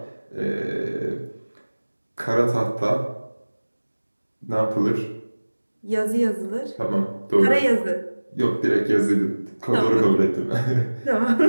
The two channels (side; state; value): both; inverted; correlation -1.00